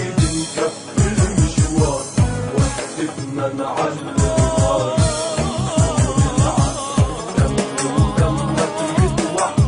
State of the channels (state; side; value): identical; both; correlation 1.00